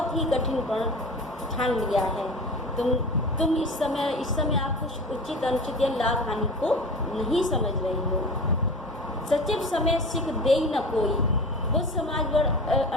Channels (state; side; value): normal; both; correlation 0.34